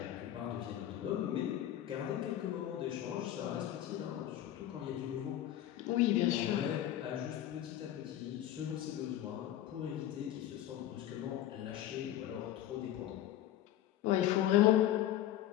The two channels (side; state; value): right; quieter; 12.5 dB